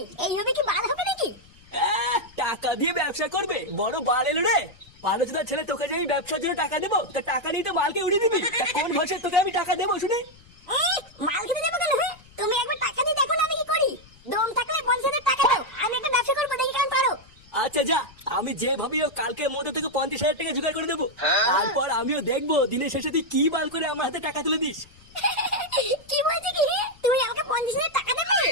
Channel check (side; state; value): left; noise; rumble, 25 dB below the sound